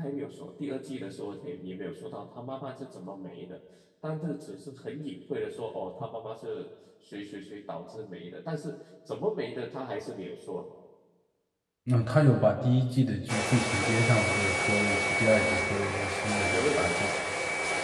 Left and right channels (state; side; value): identical; both; correlation 1.00